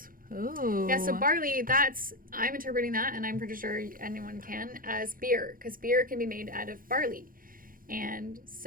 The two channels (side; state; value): left; late; 0.41 ms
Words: Oh. Yeah, so barley, I'm interpreting that, and I'm pretty sure anyone can, as beer, because beer can be made out of barley. And